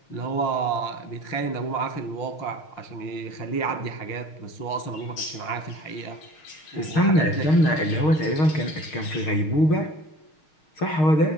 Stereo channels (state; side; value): late; right; 6.5 ms